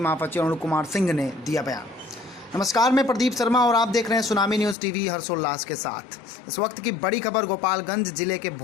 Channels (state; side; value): drops out; right; at 4.8 s